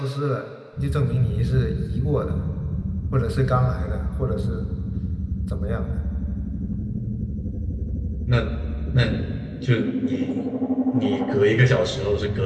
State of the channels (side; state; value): both; identical; correlation 1.00